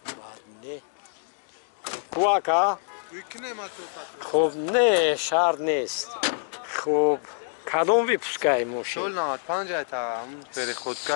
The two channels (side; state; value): right; silent; digital silence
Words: بعد نه کواکا خب نه شرط نیست خب کدوم ویپسکای ماشین سول 95 تا هم پری